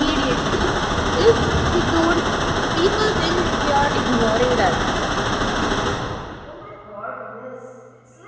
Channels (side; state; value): both; identical; correlation 1.00